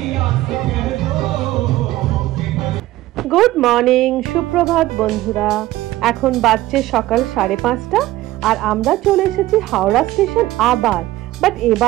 গুড মর্নিং, সুপ্রভাত বন্ধুরা। এখন বাজছে সকাল 5:30 আর আমরা চলে এসেছি হাওড়া স্টেশন আবার। বাট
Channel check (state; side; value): quieter; left; 16.4 dB